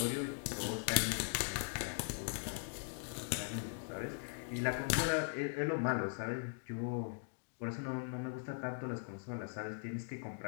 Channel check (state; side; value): silent; right; digital silence